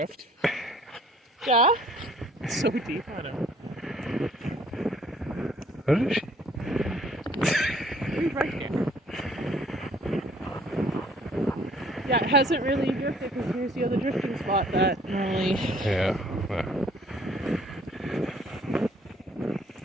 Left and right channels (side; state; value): both; normal; correlation 0.59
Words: Yeah? It's so deep on him. What is she? He's right here. Yeah, it hasn't really drifted because here's the other drifting spot that normally... Yeah.